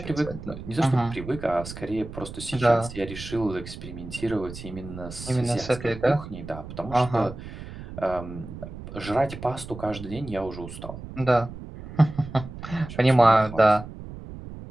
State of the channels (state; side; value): noise; right; rumble, 12 dB below the sound